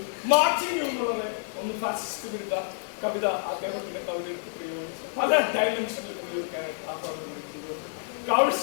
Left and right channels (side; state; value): right; silent; digital silence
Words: മാർച്ചിങ് എന്നുള്ളത് ഒന്ന് ഫാസിസ്റ്റ് വിരുദ്ധ കവിത അദ്ദേഹത്തിന്റെ കവിതയ്ക്ക് പ്രയോഗിച്ചു. പല ഡയമെൻഷനിൽ ഉപയോഗിക്കാനായിട്ട് ആഹ്വാനം